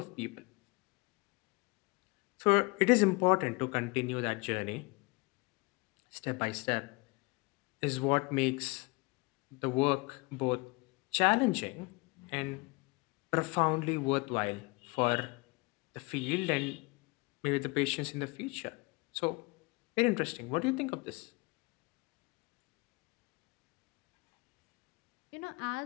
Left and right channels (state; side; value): quieter; right; 26.9 dB